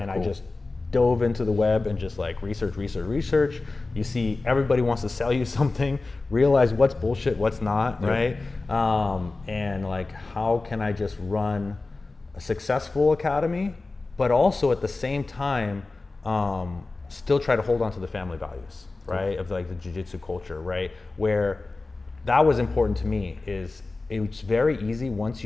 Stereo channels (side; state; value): right; quieter; 3.5 dB